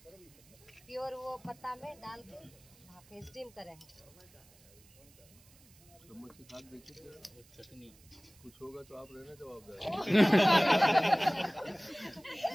प्योर वो पत्ता में डाल के भापे स्टीम करें हैं। चम्मच से खाक देखिए, चटनी। कुछ होगा तो आप रहना जवाबदार।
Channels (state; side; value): noise; right; hiss, 26 dB below the sound